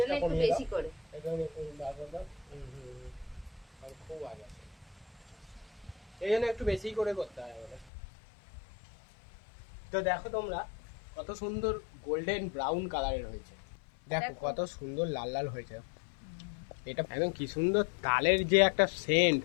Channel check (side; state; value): right; drops out; at 7.9 s